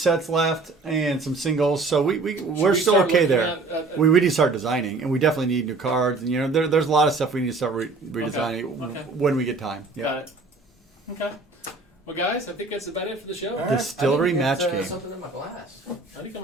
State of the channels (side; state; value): left; quieter; 3.6 dB